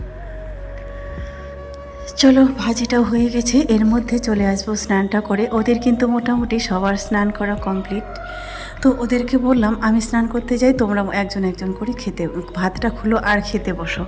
চলো ভাজিটাও হয়ে গেছে, এর মধ্যে চলে আসবো স্নানটা করে। ওদের কিন্তু মোটামুটি সবার স্নান করা কমপ্লিট। তো ওদেরকে বললাম আমি স্নান করতে যাই, তোমরা একজন একজন করে খেতে ভাতটা খুলো আর খেতে বসো,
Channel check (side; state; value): both; identical; correlation 1.00